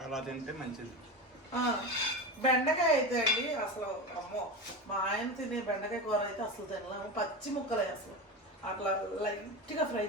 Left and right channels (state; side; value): normal; both; correlation 0.22